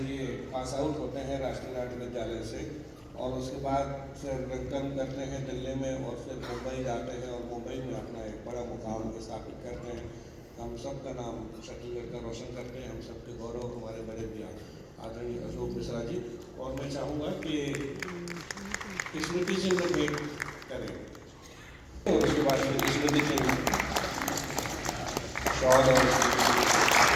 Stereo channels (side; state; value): both; identical; correlation 1.00